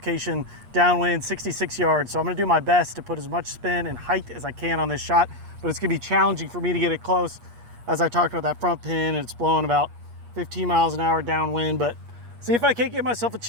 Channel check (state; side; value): late; left; 8.4 ms